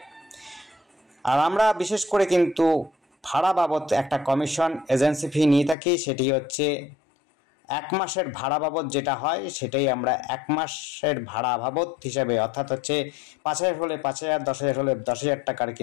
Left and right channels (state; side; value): drops out; right; at 5.8 s